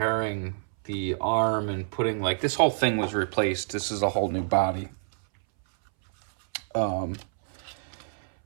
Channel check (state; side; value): silent; left; 60 dB below the other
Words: the arm and putting, like, this whole thing was replaced. This is a whole new body.